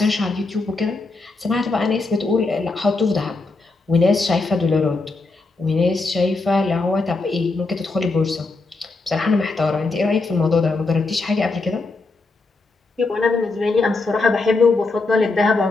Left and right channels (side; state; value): right; quieter; 3.6 dB